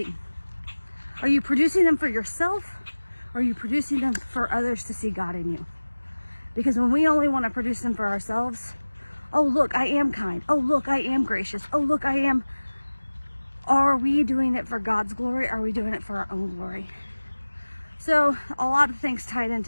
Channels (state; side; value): inverted; both; correlation -1.00